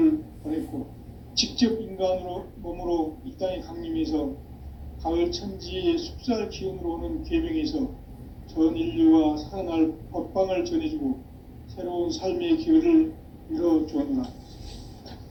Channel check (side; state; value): both; identical; correlation 1.00